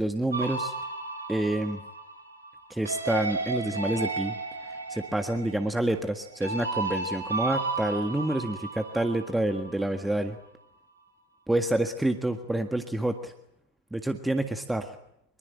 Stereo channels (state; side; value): normal; both; correlation 0.66